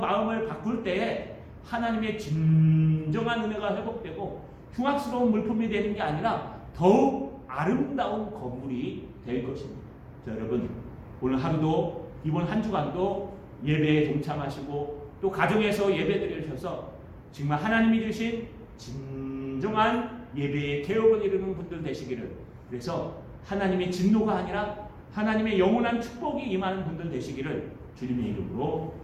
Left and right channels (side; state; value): both; identical; correlation 1.00